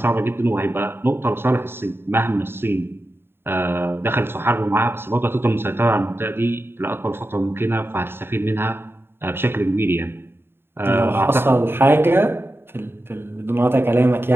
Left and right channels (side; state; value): left; late; 0.11 ms